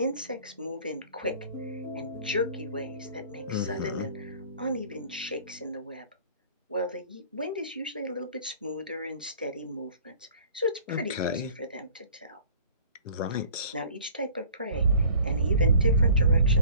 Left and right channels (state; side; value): inverted; both; correlation -0.49